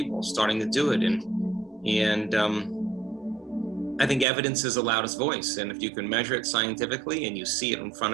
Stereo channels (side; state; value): left; drops out; at 4.2 s